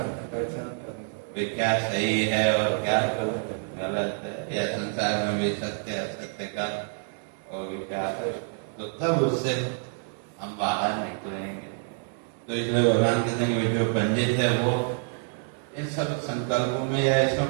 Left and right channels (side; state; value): left; silent; 60 dB below the other